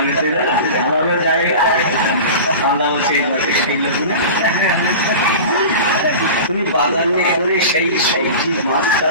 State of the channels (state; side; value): inverted; both; correlation -0.33